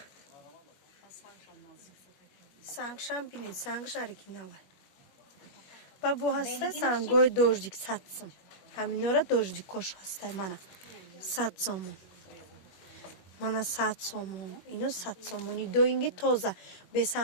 Сангшам бинед, сангш оригинал. Ба бо ҳаста сангои дождик 100 сом. Ҳаминора дождикош ҳастай mana 100 сомон. Mana 100 сомон. Ино 100 сомони доинги тоза.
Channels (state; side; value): late; right; 21 ms